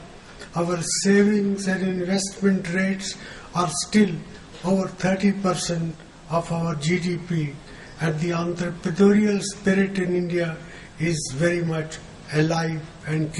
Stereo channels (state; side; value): identical; both; correlation 1.00